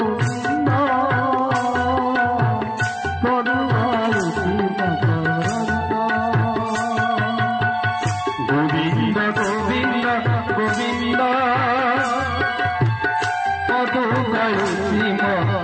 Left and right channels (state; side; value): identical; both; correlation 1.00